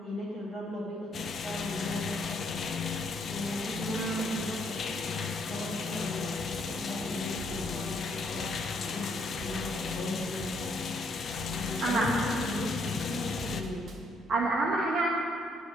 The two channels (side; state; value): both; normal; correlation 0.70